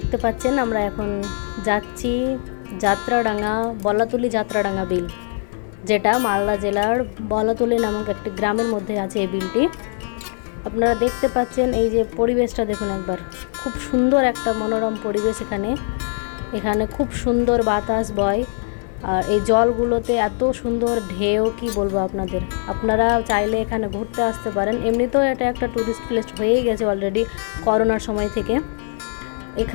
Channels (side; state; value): right; silent; 63 dB below the other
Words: পাচ্ছেন আমরা এখন যাচ্ছি যাত্রাডাঙ্গা যাত্রাডাঙ্গা বিল, যেটা মালদা জেলার বলাতুলি নামক একটি গ্রামের মধ্যে আছে এই বিলটি। আপনারা দেখতে পাচ্ছেন এই যে পরিবেশটা দেখুন একবার, খুব সুন্দর একটা মনোরম পরিবেশ। এখানে খুব সুন্দর বাতাস বয়, আর এই জলগুলোতে এত সুন্দর ঢেউ, কি বলবো আপনাদের। আপনারা চাইলে এখানে ঘুরতে আসতে পারেন। এমনিতেও এটা একটা ট্যুরিস্ট প্লেস হয়েই গেছে অলরেডি করোনার সময় থেকে।